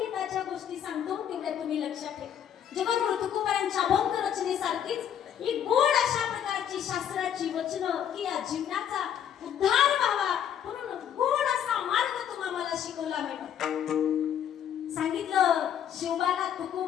गोष्टी सांगतो तेवढ्या तुम्ही लक्षात ठेवा जगद्गुरु तुकोबांच्या अभंग रचनेसारखीच ही गोड अशा प्रकारची शास्त्राची वचनं की या जीवनाचा उद्धार व्हावा म्हणून गोड असा मार्ग तुम्हाला शिकवला मॅडम सांगितलं शिवबाला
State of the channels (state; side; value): quieter; right; 9.3 dB